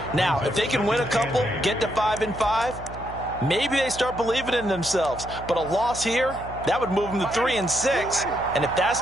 Now, if they can win a couple, get to 5-5, maybe they start believing in themselves. But a loss here, that would move them to 3-6. And if that's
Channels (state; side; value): noise; right; hum, 13 dB below the sound